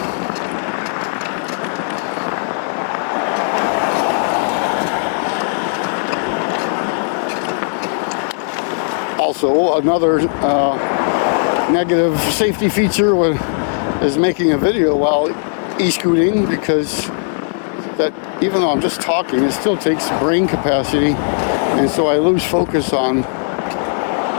Also, another negative safety feature is making a video while e-scooting, because that, even though I'm just talking, it still takes brain capacity, and so I lose focus on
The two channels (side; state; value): right; silent; 68 dB below the other